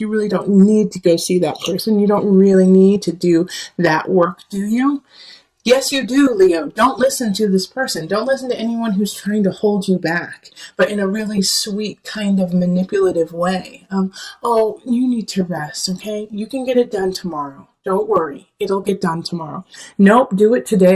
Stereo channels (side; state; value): both; identical; correlation 1.00